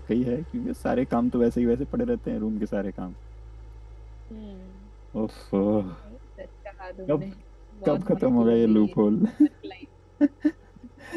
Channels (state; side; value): identical; both; correlation 1.00